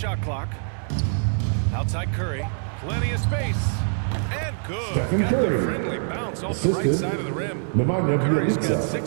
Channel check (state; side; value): silent; left; 60 dB below the other